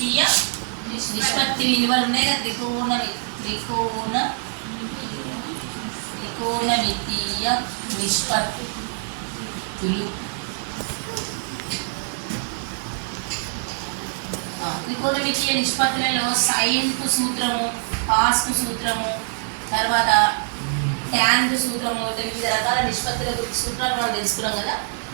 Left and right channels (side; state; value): left; silent; digital silence